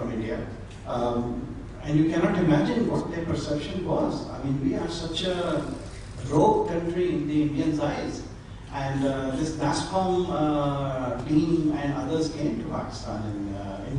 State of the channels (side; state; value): both; identical; correlation 1.00